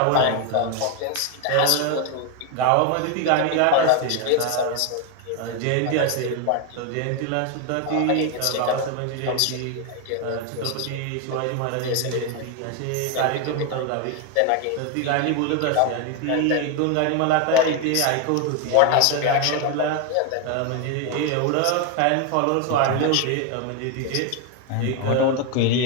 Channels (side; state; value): both; different; correlation 0.01